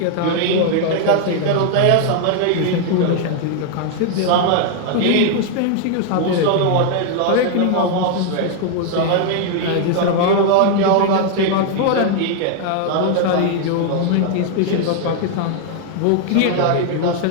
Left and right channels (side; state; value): both; different; correlation 0.00